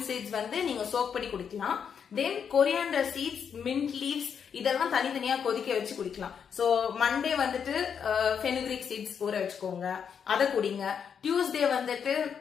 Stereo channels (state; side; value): quieter; right; 7.3 dB